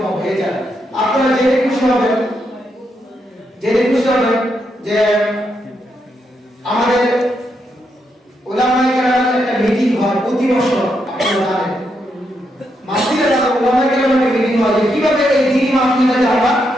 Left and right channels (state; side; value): normal; both; correlation 0.81